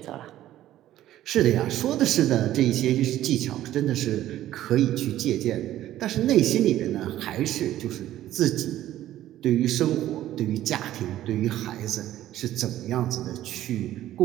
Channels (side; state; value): left; quieter; 13.4 dB